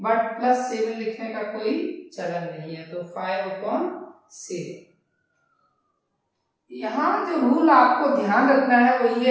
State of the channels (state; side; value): identical; both; correlation 1.00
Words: बट +7 लिखने का कोई चलन नहीं है, तो 5/7। यहाँ जो रूल आपको ध्यान रखना है वो